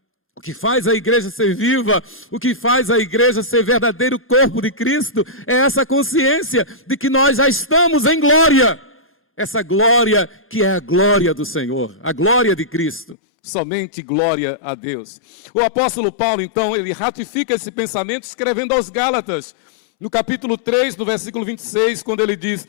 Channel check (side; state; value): right; drops out; at 13.2 s